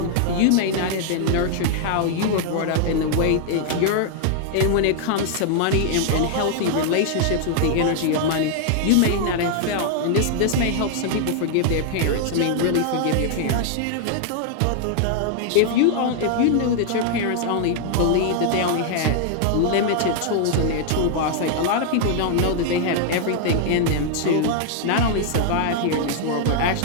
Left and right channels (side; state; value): both; different; correlation 0.00